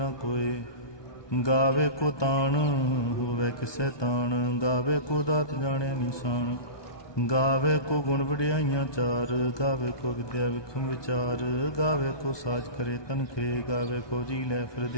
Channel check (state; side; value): late; right; 1.2 ms